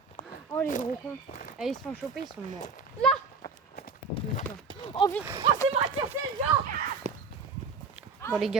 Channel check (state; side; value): quieter; left; 4.8 dB